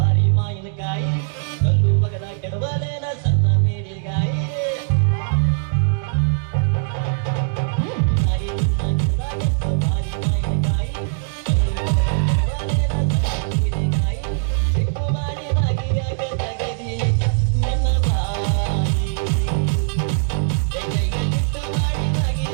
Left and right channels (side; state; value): left; silent; digital silence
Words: ಮಾವಿನಕಾಯಿ ಕಲ್ಲು ಬಗದ ಕೆಡವಲೇನ